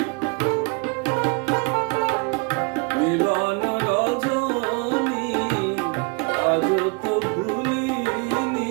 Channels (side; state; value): left; quieter; 32.5 dB